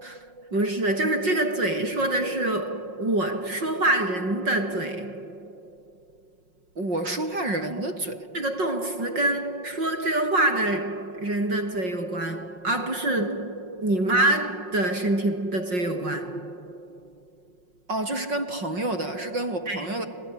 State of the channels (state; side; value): late; left; 5.5 ms